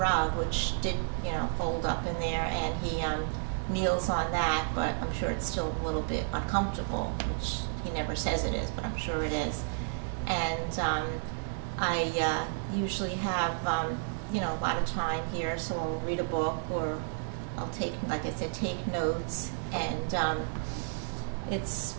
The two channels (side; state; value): left; silent; digital silence